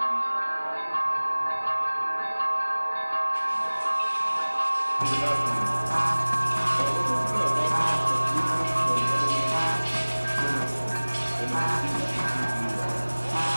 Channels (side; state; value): both; inverted; correlation -1.00